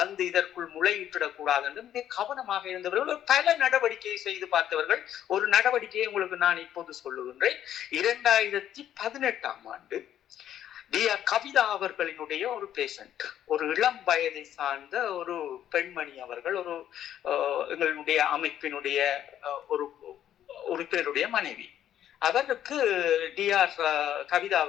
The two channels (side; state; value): right; quieter; 10.9 dB